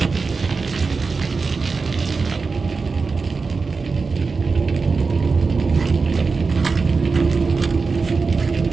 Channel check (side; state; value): left; quieter; 4.5 dB